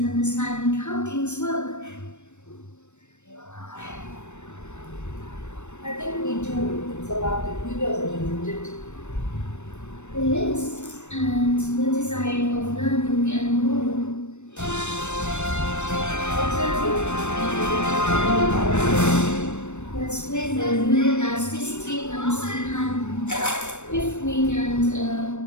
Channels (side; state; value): right; late; 0.83 ms